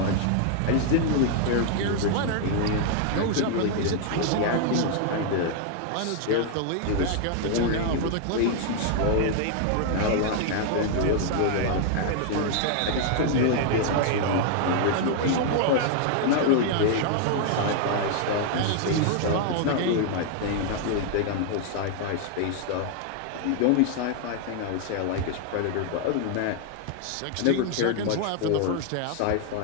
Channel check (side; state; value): both; different; correlation 0.00